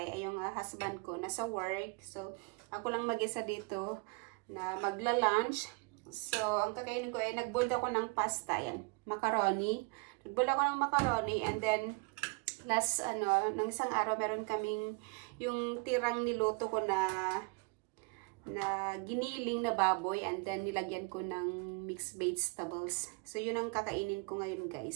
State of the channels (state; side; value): quieter; left; 30.5 dB